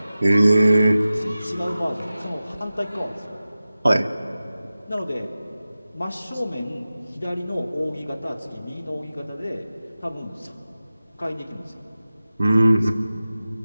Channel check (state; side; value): inverted; both; correlation -0.95